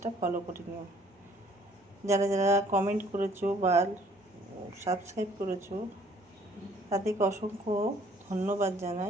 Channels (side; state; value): both; normal; correlation 0.59